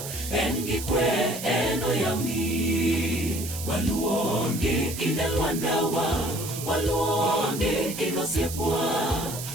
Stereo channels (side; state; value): right; noise; hiss, 8 dB below the sound